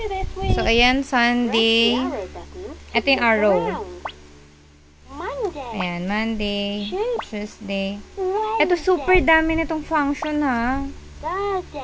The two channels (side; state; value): both; identical; correlation 1.00